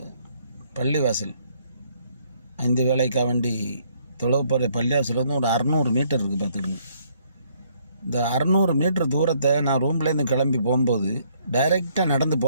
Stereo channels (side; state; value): both; inverted; correlation -0.67